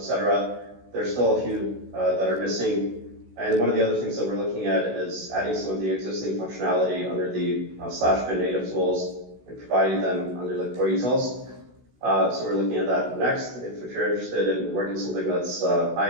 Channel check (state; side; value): late; left; 16 ms